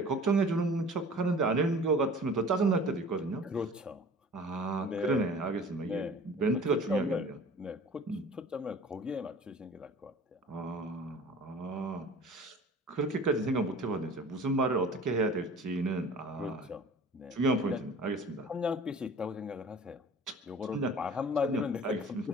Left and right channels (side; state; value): both; normal; correlation 0.44